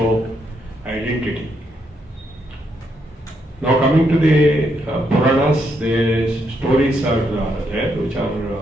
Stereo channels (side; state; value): both; normal; correlation 0.77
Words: identity. Now coming to the Puranas, the stories are there, which